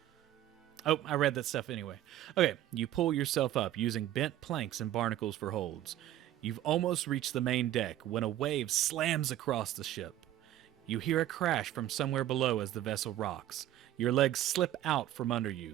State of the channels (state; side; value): quieter; left; 12.9 dB